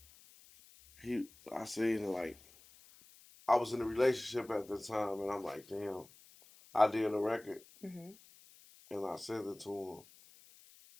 I seen like I was in a relationship at the time, and I'm like, damn, I did a record, Mm-hmm. and I sent it to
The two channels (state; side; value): noise; left; hiss, 24 dB below the sound